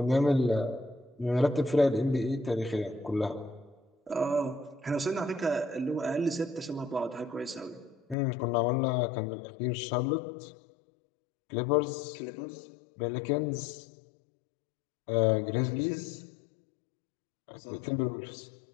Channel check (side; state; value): right; drops out; at 8.2 s